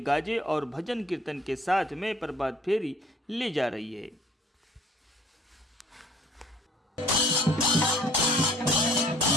गाजे और भजन कीर्तन के साथ में प्रभात फेरी ले जा रही है।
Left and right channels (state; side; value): normal; both; correlation 0.56